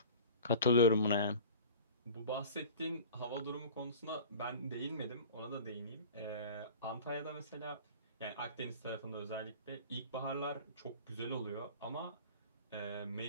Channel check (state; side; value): inverted; both; correlation -0.42